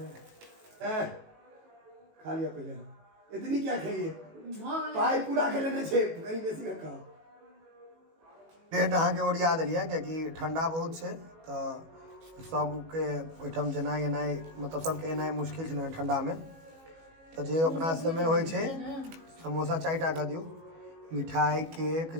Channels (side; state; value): left; late; 18 ms